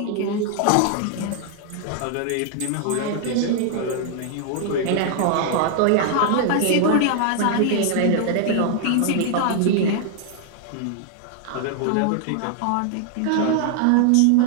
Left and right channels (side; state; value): both; different; correlation 0.00